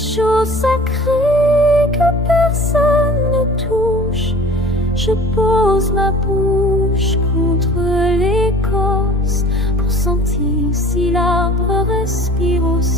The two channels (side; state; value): both; normal; correlation 0.45